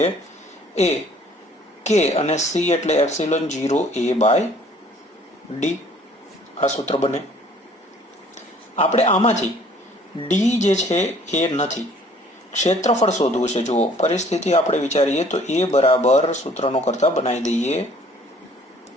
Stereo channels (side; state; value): both; normal; correlation 0.56